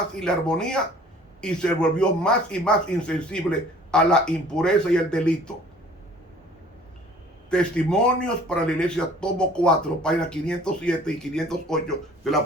y la armonía y se volvió más y más insensible a la impureza y el delito. Testimonios para la iglesia, tomo 4, páginas 507 y 508 de la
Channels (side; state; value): both; normal; correlation 0.52